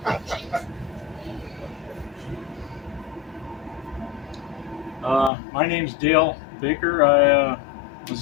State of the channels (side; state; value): right; drops out; at 5.3 s